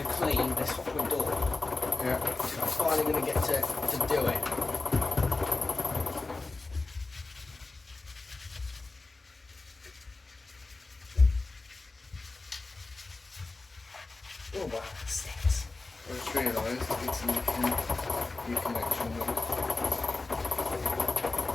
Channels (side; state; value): right; quieter; 3.5 dB